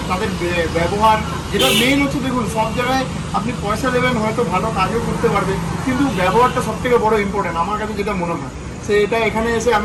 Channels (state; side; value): identical; both; correlation 1.00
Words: তাদের ব্যবহার, যেটা মেন হচ্ছে, দেখুন সব জায়গায় আপনি পয়সা দেবেন, হয়তো ভালো কাজও করতে পারবে, কিন্তু ব্যবহারটা সব থেকে বড় ইম্পর্টেন্ট আমার কাছে যেটা মনে হয়। সেটা এখানে এসে